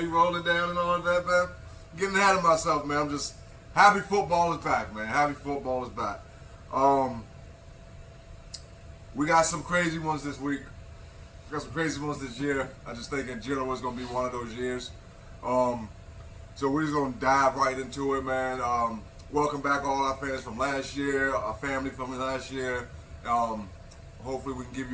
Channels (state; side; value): identical; both; correlation 1.00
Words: rolling down and all of that, man. Getting ahead of myself, man. I'm just happy football is back, man. Happy football is back. We got some crazy ones this week. We got some crazy ones this year. I just think in general it's going to be one of those years. So we're just going to dive right into it, man. Welcome back all our fans from last year, our family from last year. Hopefully we can give